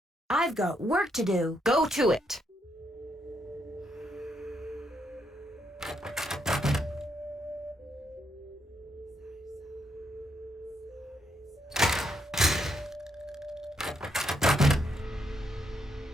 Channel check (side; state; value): both; normal; correlation 0.77